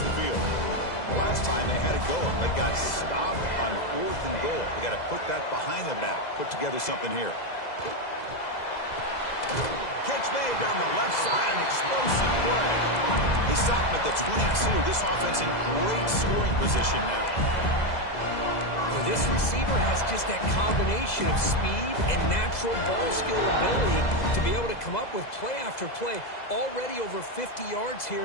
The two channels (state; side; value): late; right; 2.0 ms